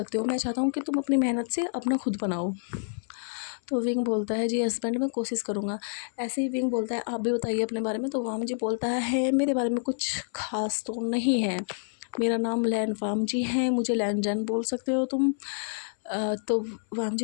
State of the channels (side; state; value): right; silent; 59 dB below the other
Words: हो। मैं चाहता हूँ कि तुम अपनी मेहनत से अपना खुद बनाओ। तो विंग बोलता है जी हस्बैंड मैं कोशिश करूँगा। ऐसे ही विंग बोलता है आप भी बताइए अपने बारे में। तो वामजी बोलता है मेरे बारे में कुछ खास तो नहीं है, मेरा नाम लैन वामजी है, मुझे लैन जैन बोल सकते हो तुम। तो वामजी